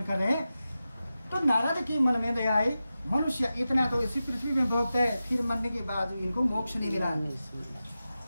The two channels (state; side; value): inverted; both; correlation -0.93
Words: कर रहे हैं। तो नारद के मन में दया आई, मनुष्य इतना तो इसी पृथ्वी में भोगते हैं, फिर मरने के बाद इनको मोक्ष नहीं मिला,